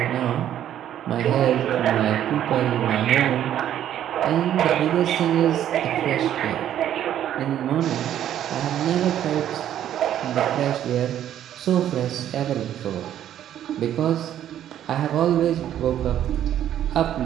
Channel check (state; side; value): quieter; left; 11.0 dB